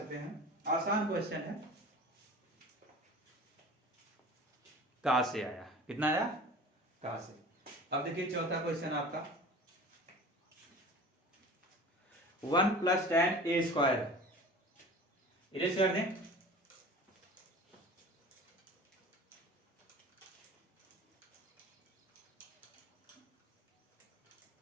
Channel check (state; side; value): normal; both; correlation 0.40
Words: हैं, आसान क्वेश्चन है। कास से आया, कितना आया, कास से। अब देखिए चौथा क्वेश्चन आपका, 1 प्लस टेन ए स्क्वायर, इरेज कर दें।